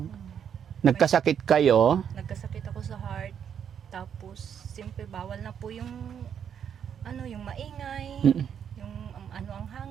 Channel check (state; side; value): quieter; left; 8.3 dB